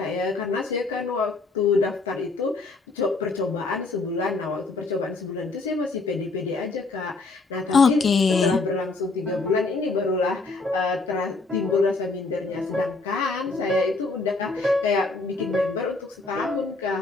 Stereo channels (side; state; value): right; quieter; 3.6 dB